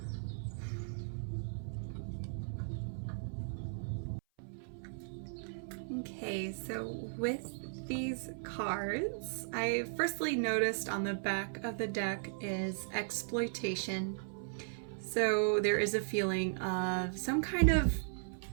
Okay, so with these cards, I firstly noticed on the back of the deck is exploitation. So there is a feeling of some kind of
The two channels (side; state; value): left; silent; 53 dB below the other